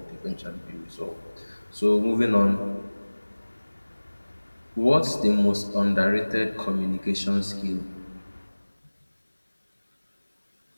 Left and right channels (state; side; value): inverted; both; correlation -1.00